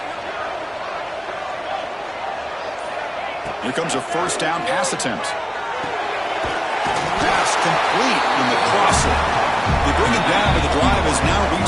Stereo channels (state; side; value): identical; both; correlation 1.00